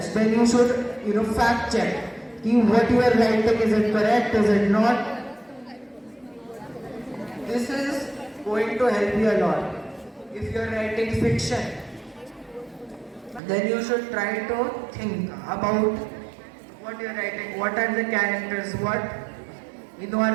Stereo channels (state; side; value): drops out; left; at 13.4 s